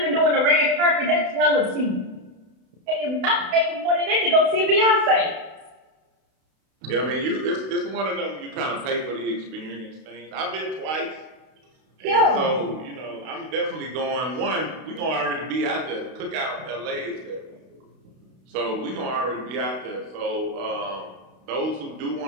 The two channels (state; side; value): late; left; 32 ms